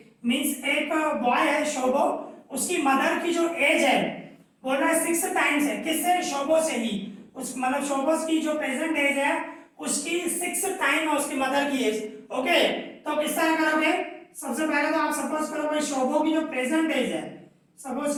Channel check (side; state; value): both; identical; correlation 1.00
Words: means एक बॉय है शोभो, उसकी मदर की जो एज है बोल रहा है 6 टाइम्स है। किससे? शोभो से ही। उस मतलब शोभोस की जो प्रेजेंट एज है उसकी 6 टाइम है उसकी मदर की एज। ओके, तो किस तरह करोगे? सबसे पहले तो आप सपोज करो भाई शोभो की जो प्रेजेंट एज है, सपोज